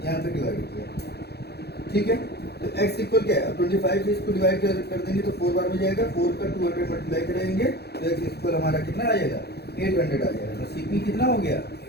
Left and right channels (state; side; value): late; right; 0.48 ms